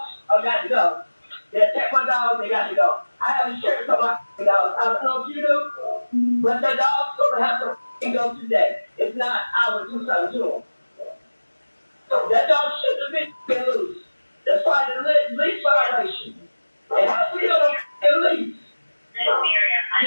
are got to go. They attack my dogs, they got to go. I have insurance on my dogs. I don't know if you do, but the dog's gonna have to go today. If not, I will do something to them. That dog shouldn't have been loose. That's why the lease violation. And how we gonna lease? Miss Miriam, I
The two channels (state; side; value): inverted; both; correlation -1.00